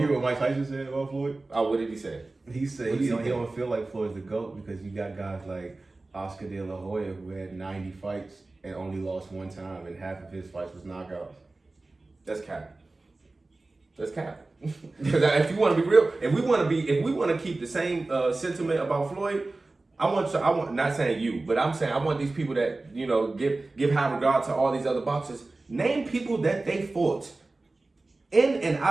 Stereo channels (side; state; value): left; quieter; 3.2 dB